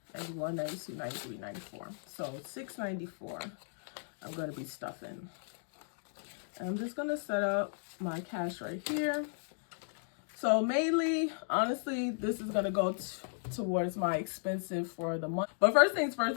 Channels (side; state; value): right; silent; digital silence